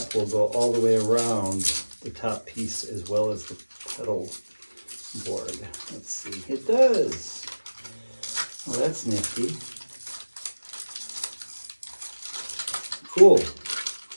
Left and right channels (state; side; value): inverted; both; correlation -1.00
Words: will go all the way around the top piece as well as the pedal board. Let's see. It does. Well, that's nifty. Cool.